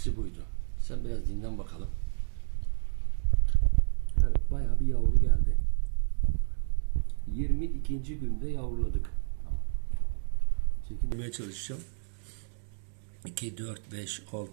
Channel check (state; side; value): silent; left; 58 dB below the other